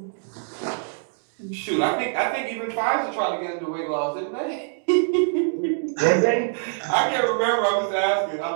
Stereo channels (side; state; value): left; silent; 62 dB below the other